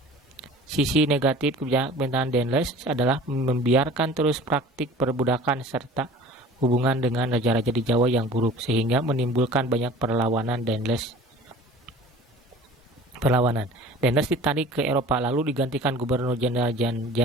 sisi negatif pemerintahan Daendels adalah membiarkan terus praktik perbudakan serta hubungan dengan raja-raja di Jawa yang buruk, sehingga menimbulkan banyak perlawanan. Daendels ditarik ke Eropa lalu digantikan Gubernur Jenderal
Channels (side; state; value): both; normal; correlation 0.44